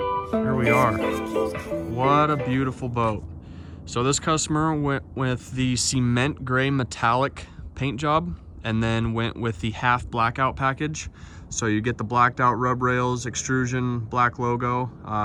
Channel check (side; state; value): both; identical; correlation 1.00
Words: Here we are. What a beautiful boat. So this customer went with the cement gray metallic paint job and then went with the half blackout package. So you get the blacked out rub rails, extrusion, black logo.